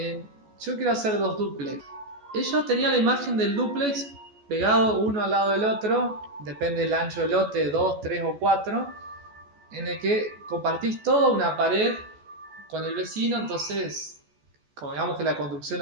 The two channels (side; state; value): left; late; 14 ms